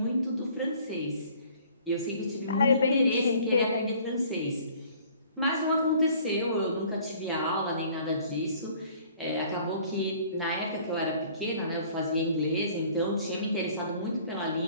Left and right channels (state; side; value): inverted; both; correlation -0.54